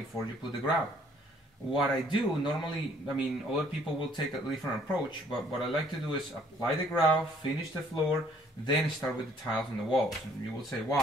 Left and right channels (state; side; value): normal; both; correlation 0.61